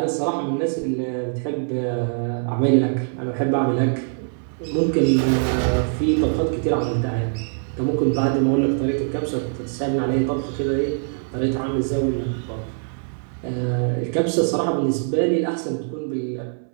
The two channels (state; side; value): silent; left; 64 dB below the other